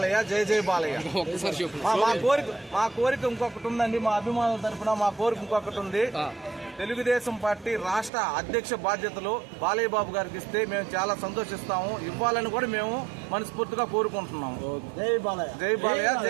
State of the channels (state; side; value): drops out; left; at 8.1 s